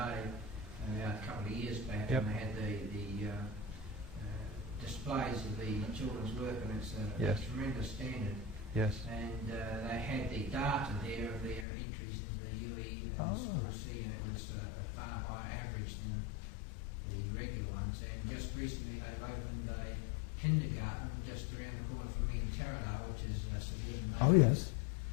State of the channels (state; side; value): drops out; right; at 11.7 s